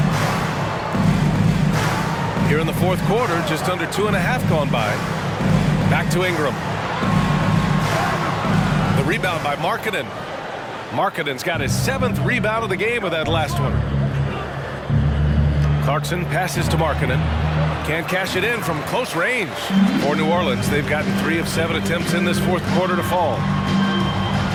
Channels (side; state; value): both; identical; correlation 1.00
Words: Here in the fourth quarter, just under 2.5 gone by. Back to Ingram. The rebound by Markkanen. Markkanen's got his 7th rebound of the game with that last one. Clarkson passes to Markkanen. Can't cash it in from close range. For New Orleans, they've gotten 3 of 7 attempts in this fourth quarter to fall.